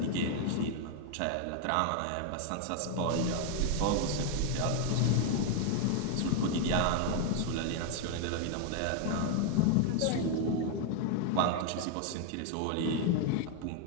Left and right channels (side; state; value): both; different; correlation 0.00